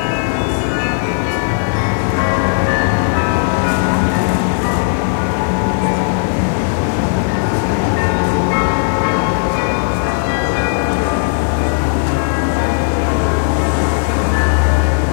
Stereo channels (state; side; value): silent; right; digital silence